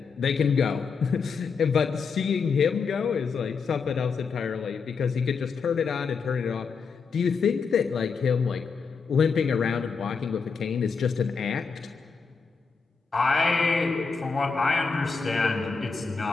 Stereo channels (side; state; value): right; quieter; 5.3 dB